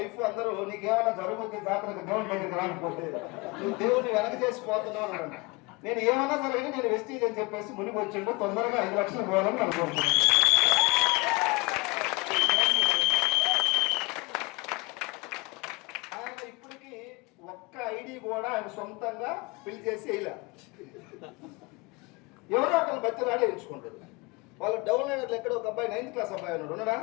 అందరూ నీకేమన్నా జరుగుతుంది జాతరకు దేవుని దగ్గరికి రాకపోతే నువ్వు దేవుని వెనక చేసిపోతున్నావు అన్నాడు. నేను ఏమన్నా జరగని నేను వెస్టీజ్ అని చెప్పేసి మునిగి వచ్చిండు, తొందరగా 5 లక్షలు పోవాలని అనుకుంటున్నాను. ఆయన ఇప్పటికి ఒక్క ఐడి కూడా ఆయన సొంతంగా ఫిల్ చేసి వేయలే. ఎవరో ఒకళ్ళు బతిలాడే ఎంచుకుంటారు. వాళ్ళు డౌన్ అయినట్లు ఎక్కడ ఒక అబ్బాయి 9th క్లాస్ అబ్బాయి ఉన్నాడా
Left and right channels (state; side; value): quieter; right; 25.7 dB